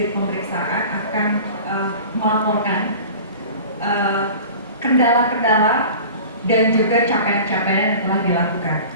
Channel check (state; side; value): inverted; both; correlation -0.39